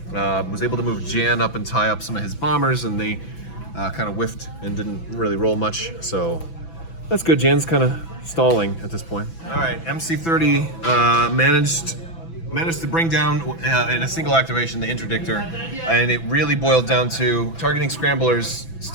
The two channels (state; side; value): late; right; 6.0 ms